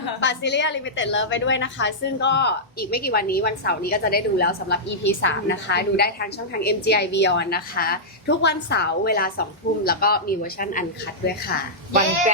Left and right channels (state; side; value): normal; both; correlation -0.11